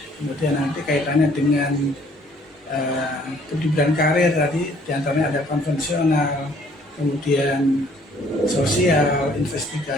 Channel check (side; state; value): both; normal; correlation 0.60